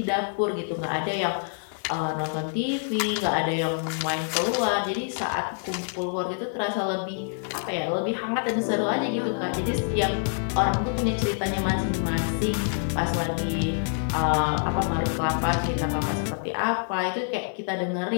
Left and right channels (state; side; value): silent; right; digital silence